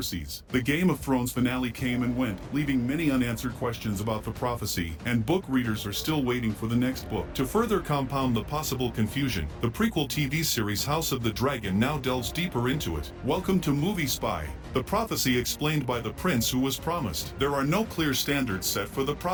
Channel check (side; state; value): both; identical; correlation 1.00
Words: The Game of Thrones finale came and went, leaving many unanswered questions about the prophecy, and book readers are still waiting for the next book. To further compound the possible confusion, the prequel TV series House of the Dragon now delves deeper into it. Welcome to Movie Spy. The prophecy explained by the prince who was promised. There are no clear standards set for the